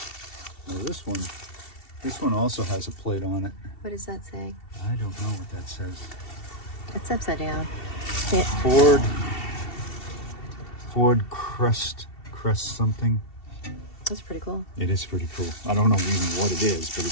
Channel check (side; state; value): right; late; 2.7 ms